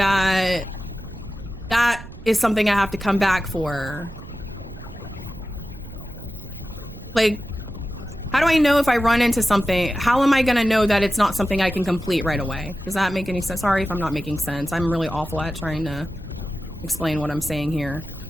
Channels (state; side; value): noise; right; rumble, 14 dB below the sound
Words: that is something I have to come back for? Like, how do I know if I run into something? How am I going to know that it's not something I can complete right away? Does that make any sense? Sorry if I'm not making sense. I'm really awful at trying to explain what I'm saying here.